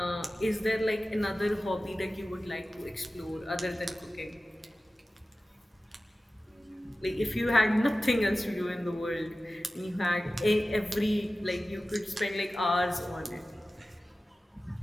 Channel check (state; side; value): normal; both; correlation 0.96